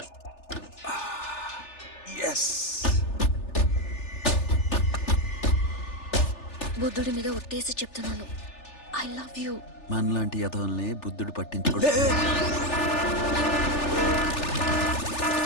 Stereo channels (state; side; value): late; right; 3.4 ms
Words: Yes. బుద్ధుడి మీద ఒట్టేసి చెప్తున్నాను. I love you. మనలాంటి యథవల్ని బుద్ధుడు పట్టించుకోడు.